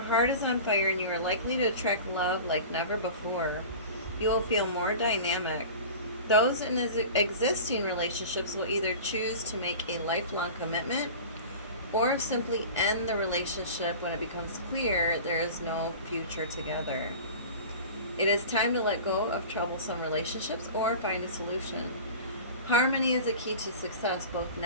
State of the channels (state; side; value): inverted; both; correlation -0.37